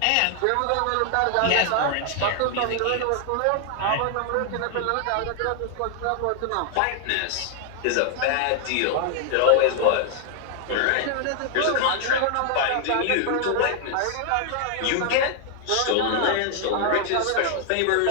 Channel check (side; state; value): both; different; correlation 0.00